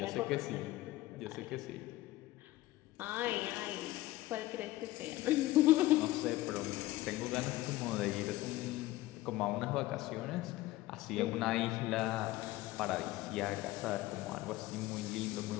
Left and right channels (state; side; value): quieter; right; 17.1 dB